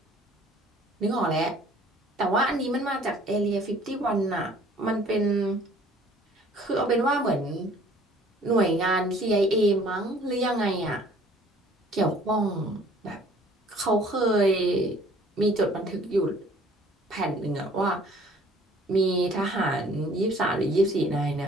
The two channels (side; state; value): both; normal; correlation 0.54